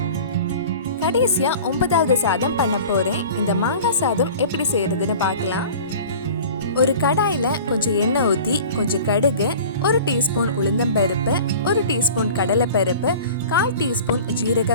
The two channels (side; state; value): both; inverted; correlation -0.41